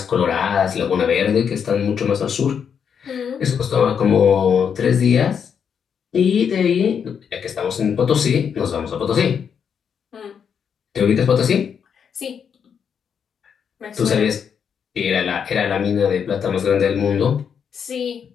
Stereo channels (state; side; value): quieter; right; 7.3 dB